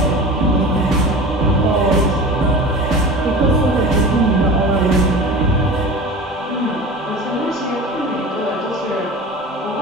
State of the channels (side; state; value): both; normal; correlation 0.34